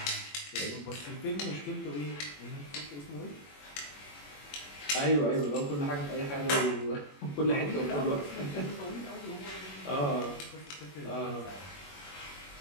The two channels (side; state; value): right; late; 21 ms